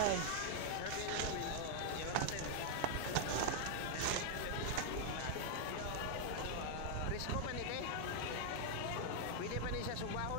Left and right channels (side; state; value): both; different; correlation 0.00